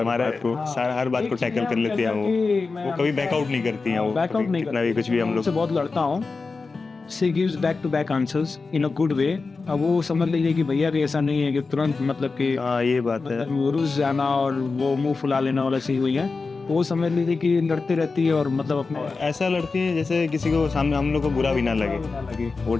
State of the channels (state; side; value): quieter; right; 4.2 dB